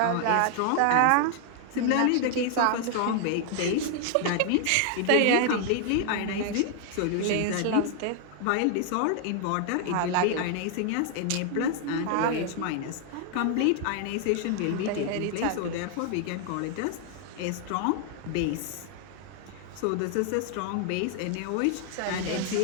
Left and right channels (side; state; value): both; different; correlation 0.00